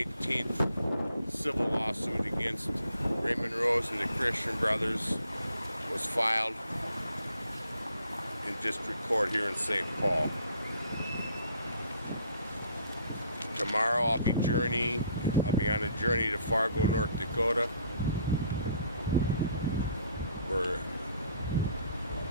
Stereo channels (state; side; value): inverted; both; correlation -0.62